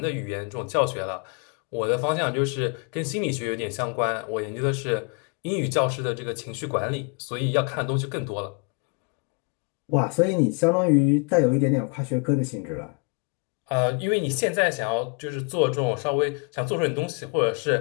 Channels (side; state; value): right; quieter; 34.8 dB